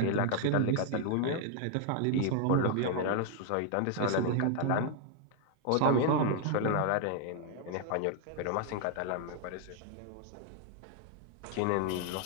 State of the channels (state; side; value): different; both; correlation 0.00